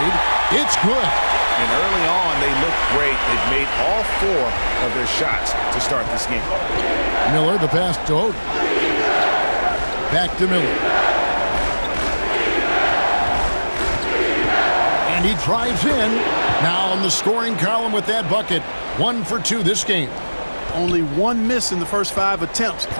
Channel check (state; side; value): inverted; both; correlation -1.00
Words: it's good. And early on, they looked great. They've made all 4 of their shots to start this game. Miller, the pass to Oden. Back to Miller. And he drives in. Now on the scoring column with that bucket. 1 for 2 this game. Only 1 miss in the first 5 attempts,